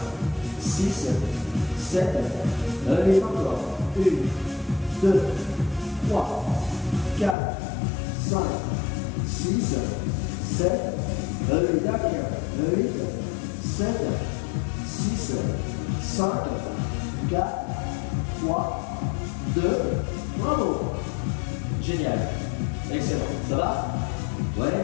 6, 7, 8 encore. 1, 2, 3, 4, 5, 6, 7, 8, derrière. 8, 7, 6, 5, 4, 3, 2, bravo. Génial. Excellent. Ça va?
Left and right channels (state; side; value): drops out; right; at 7.4 s